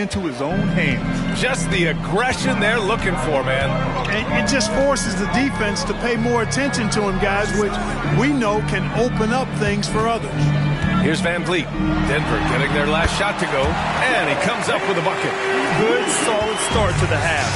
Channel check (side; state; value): both; identical; correlation 1.00